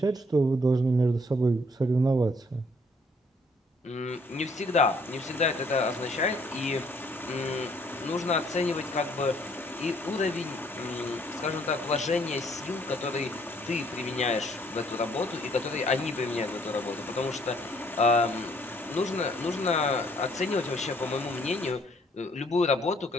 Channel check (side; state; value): both; normal; correlation 0.64